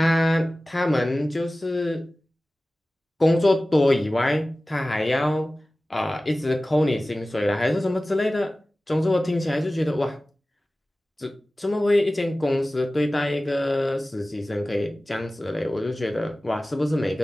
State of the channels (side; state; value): both; normal; correlation 0.97